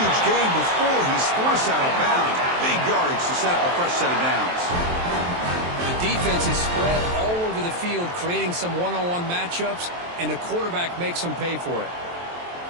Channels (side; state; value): left; late; 23 ms